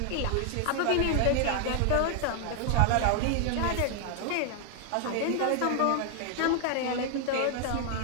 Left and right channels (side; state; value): both; different; correlation 0.00